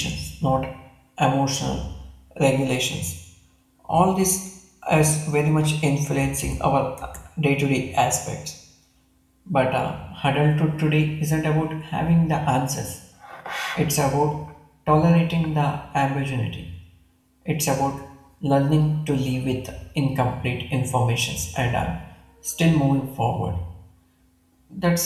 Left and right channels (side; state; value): both; identical; correlation 1.00